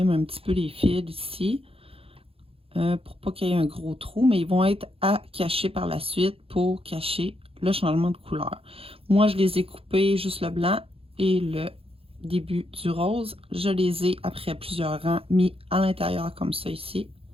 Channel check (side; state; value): left; late; 0.27 ms